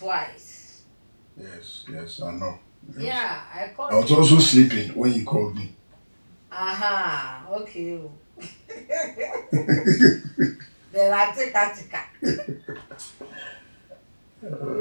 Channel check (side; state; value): both; inverted; correlation -1.00